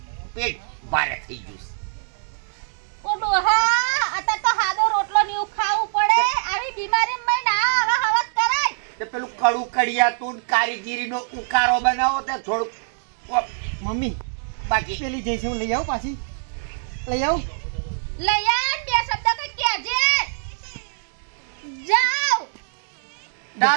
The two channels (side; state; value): left; silent; digital silence